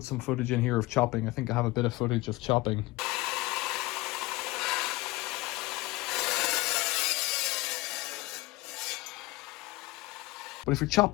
some footage in here of chopping. I think I have a bit of footage of chopping. But if you're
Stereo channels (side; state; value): right; quieter; 20.7 dB